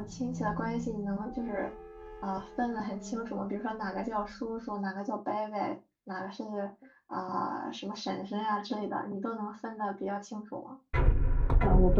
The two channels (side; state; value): both; identical; correlation 1.00